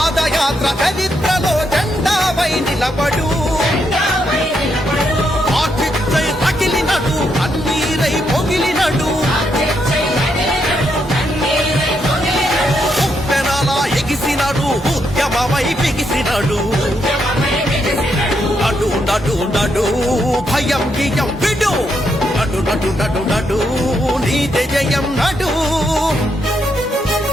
చరిత్రలో జెండాపై నిలబడు ఆచిత్తై తగిలినడు కన్నీరై పొగిలినడు ఉప్పెనలా ఎగిసినడు ఉద్యమమై బిగిసినడు నడు నడు నడు భయం గియం విడు నడు నడు నడు నడు నీదే జయం నడు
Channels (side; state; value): both; normal; correlation 0.79